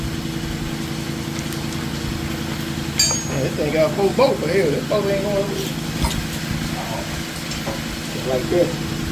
Man, this thing got 4 bolts for here. This boat ain't going over. Like this.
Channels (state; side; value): identical; both; correlation 1.00